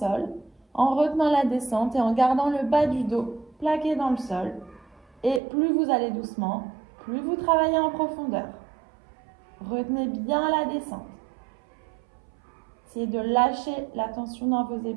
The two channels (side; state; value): left; drops out; at 5.4 s